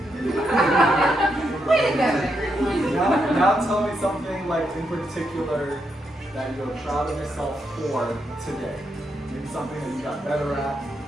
Way to go, everyone. Now tell me something like in particular that you're proud of yourself for today. Maybe something that you got better at,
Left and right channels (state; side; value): normal; both; correlation 0.81